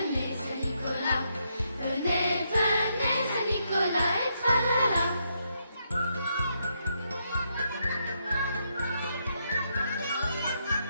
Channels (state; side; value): inverted; both; correlation -0.78